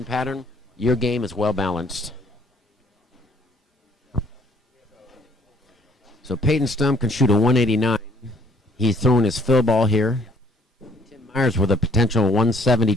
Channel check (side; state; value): both; normal; correlation 0.61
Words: pattern, your game is well balanced. So Peyton Stump can shoot a 189. He's throwing his fill ball here. Tim Myers with a potential